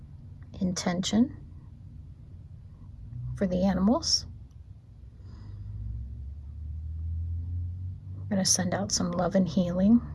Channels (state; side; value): identical; both; correlation 1.00